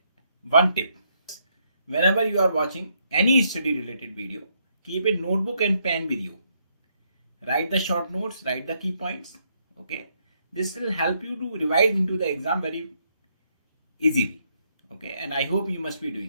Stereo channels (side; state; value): both; inverted; correlation -0.74